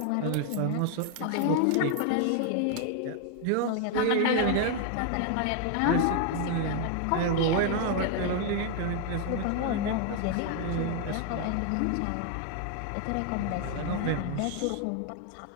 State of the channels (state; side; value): different; both; correlation 0.00